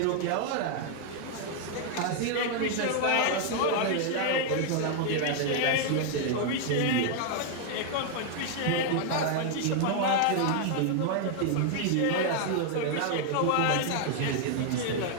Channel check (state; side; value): different; both; correlation 0.00